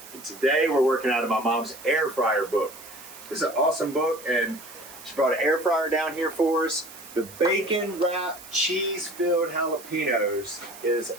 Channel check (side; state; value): right; noise; hiss, 17 dB below the sound